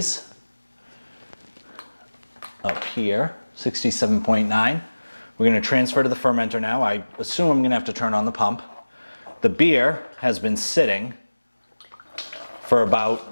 up here, 67.9. We're going to transfer to the fermenter now. I assume I'm going to have to turn on the pump. The beer has been sitting for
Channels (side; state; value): both; inverted; correlation -1.00